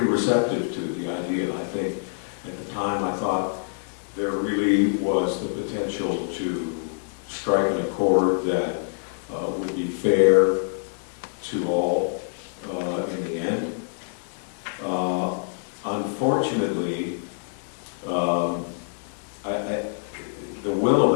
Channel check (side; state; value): right; silent; digital silence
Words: receptive to the idea. I think at the time I thought there really was the potential to strike an accord that would be fair to all in the end. Unfortunately, the will